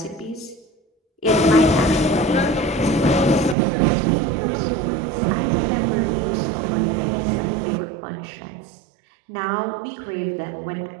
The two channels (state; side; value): drops out; left; at 3.6 s